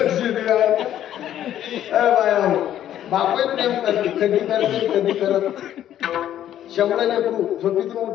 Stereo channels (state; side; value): quieter; right; 11.4 dB